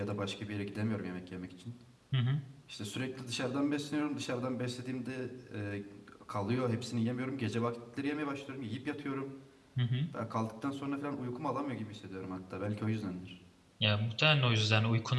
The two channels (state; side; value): identical; both; correlation 1.00